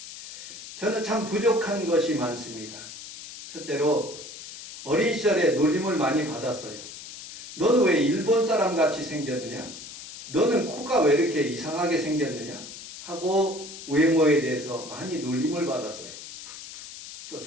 저는 참 부족한 것이 많습니다. 첫째로 어린 시절에 놀림을 많이 받았어요. 너는 왜 일본 사람 같이 생겼느냐? 너는 코가 왜 이렇게 이상하게 생겼느냐? 하고 외모에 대해서 많이 놀림을 받았어요.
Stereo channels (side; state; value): left; noise; hiss, 13 dB below the sound